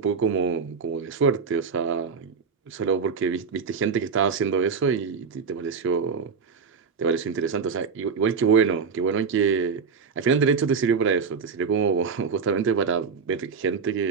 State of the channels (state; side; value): quieter; left; 5.6 dB